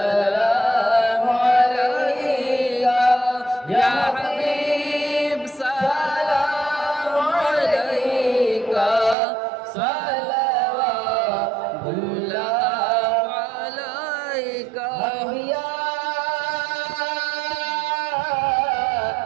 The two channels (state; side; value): drops out; left; at 9.2 s